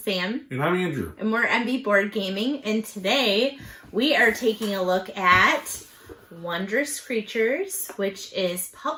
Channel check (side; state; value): both; identical; correlation 1.00